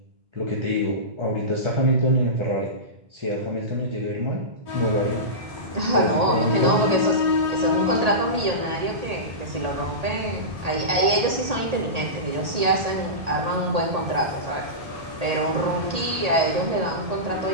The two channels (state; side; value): late; left; 1.8 ms